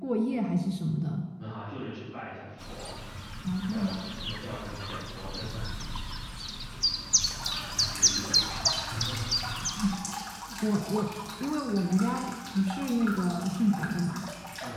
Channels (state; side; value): identical; both; correlation 1.00